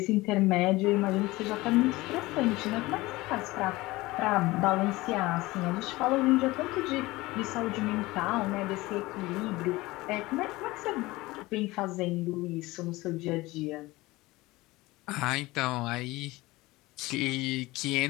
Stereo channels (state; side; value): quieter; right; 20.2 dB